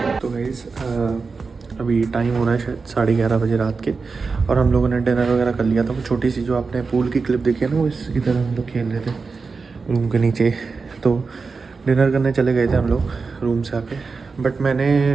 तो गाइस अभी टाइम हो रहा है शायद 11:30 बजे रात के और हम लोगों ने डिनर वगैरह कर लिया था। वो छोटी सी जो आपने पूल की क्लिप देखी है ना, वो इधर हम लोग खेल रहे थे रूम के नीचे। तो डिनर करने चले गए थे हम लोग रूम से आके, बट मैंने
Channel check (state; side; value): quieter; left; 4.6 dB